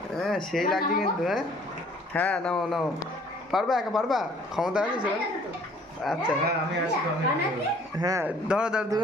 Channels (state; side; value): normal; both; correlation 0.57